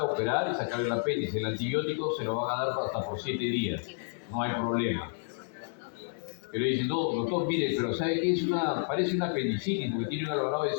operar y sacar el apéndice. El antibiótico se lo van a dar hasta por 7 días. No hay problema. Pero dicen, no, doctor, mire, pero ¿sabe qué? Parece una apendicitis porque tiene un Alvarado de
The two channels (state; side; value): silent; right; digital silence